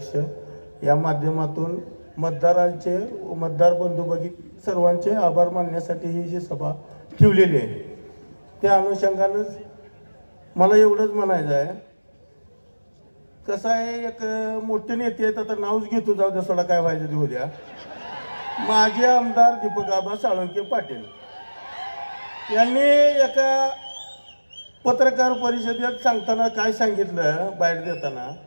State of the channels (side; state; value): both; inverted; correlation -1.00